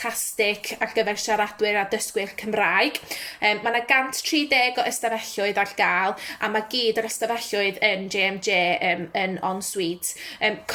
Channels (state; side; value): identical; both; correlation 1.00